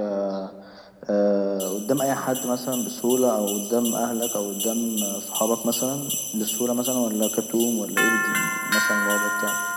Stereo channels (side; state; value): both; identical; correlation 1.00